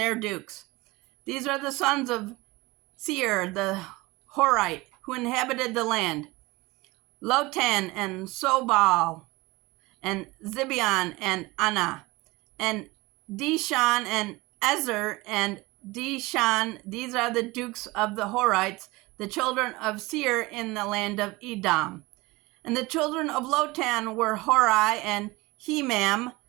dukes. These are the sons of Seir, the Horite, who inhabited the land: Lotan, and Sobal, and Zibeon, and Anna, and Dishan, and Ezer, and Dishan. These are the dukes of the Horites, the children of Seir in the land of Edom. And the children of Lotan were Hori and Hemam,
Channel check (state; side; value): quieter; left; 22.1 dB